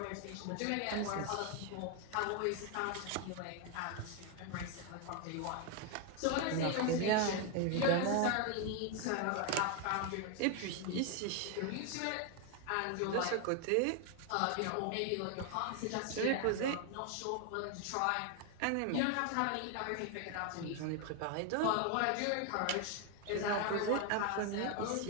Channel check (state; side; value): different; both; correlation 0.01